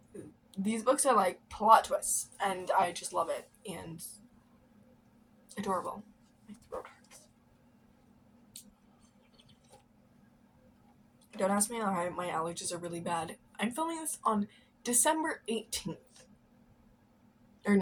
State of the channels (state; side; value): identical; both; correlation 1.00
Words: These books are like plot twists, and I just love it, and adorable. My throat hurts. Don't ask me why my allergies are really bad. I'm filming this on December 18th. Or